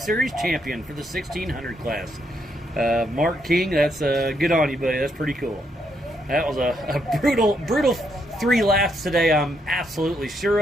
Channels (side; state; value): both; normal; correlation 0.76